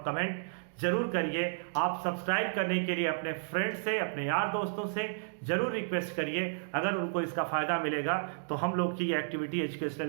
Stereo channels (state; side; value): silent; left; digital silence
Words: कमेंट जरूर करिए। आप सब्सक्राइब करने के लिए अपने फ्रेंड से, अपने यार दोस्तों से जरूर रिक्वेस्ट करिए। अगर उनको इसका फ़ायदा मिलेगा तो हम लोग की ये एक्टिविटी,